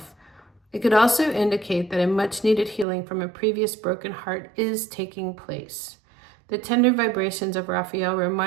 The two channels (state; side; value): drops out; left; at 2.9 s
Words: It could also indicate that a much-needed healing from a previous broken heart is taking place. The tender vibrations of Raphael